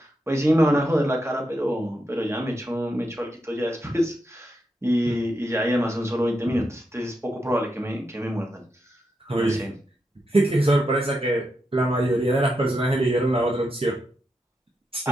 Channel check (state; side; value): normal; both; correlation 0.84